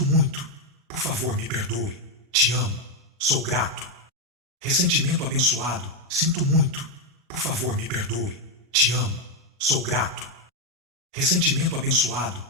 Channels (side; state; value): both; normal; correlation 0.04